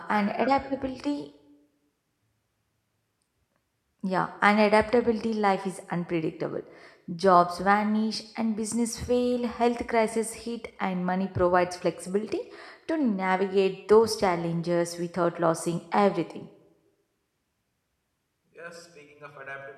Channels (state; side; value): identical; both; correlation 1.00